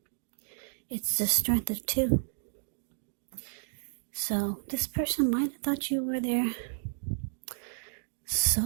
It's the strength of two. So this person might have thought you were their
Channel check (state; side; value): silent; left; digital silence